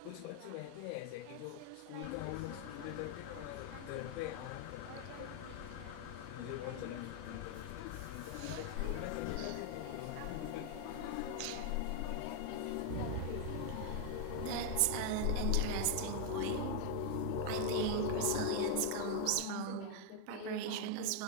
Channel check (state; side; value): different; both; correlation 0.00